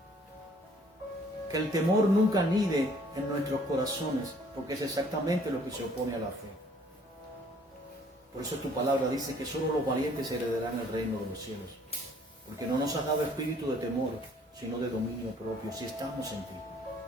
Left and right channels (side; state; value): both; normal; correlation 0.59